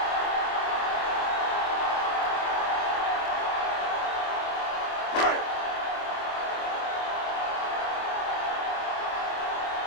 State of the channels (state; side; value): late; right; 25 ms